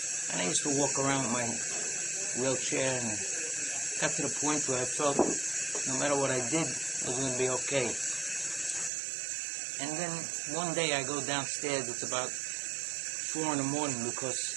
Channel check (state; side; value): drops out; left; at 8.9 s